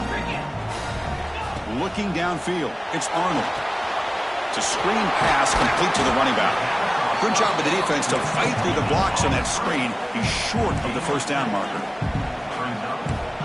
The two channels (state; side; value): identical; both; correlation 1.00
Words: Looking downfield, it's Arnold. It's a screen pass complete to the running back. Good job by the defense to fight through the blocks on that screen. He's short of the first down marker.